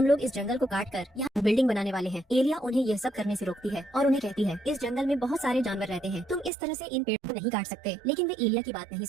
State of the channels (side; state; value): left; drops out; at 6.5 s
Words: लोग इस जंगल को काट कर यहाँ बिल्डिंग बनाने वाले हैं। एलिया उन्हें यह सब करने से रोकती है और उन्हें कहती है, इस जंगल में बहुत सारे जानवर रहते हैं, तुम इस तरह से इन पेड़ों को नहीं काट सकते। लेकिन वे एलिया की बात नहीं